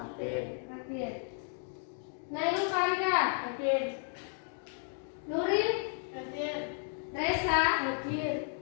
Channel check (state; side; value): silent; right; 55 dB below the other